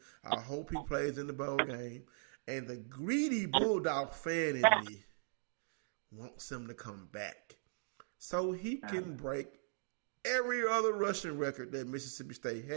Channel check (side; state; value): left; silent; digital silence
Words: I hope he plays in the bowl game. And the greedy Bulldog fan in me wants him to come back so he can break every other rushing record that Mississippi State